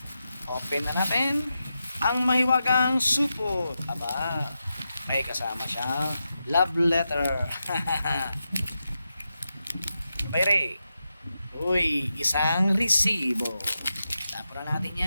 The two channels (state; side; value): inverted; both; correlation -0.89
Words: Open na natin ang mahiwagang supot. Aba, may kasama siyang love letter. Bayre. Uy, isang resibo. Tapos na natin